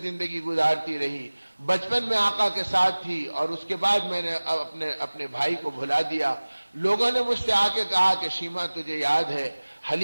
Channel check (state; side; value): inverted; both; correlation -1.00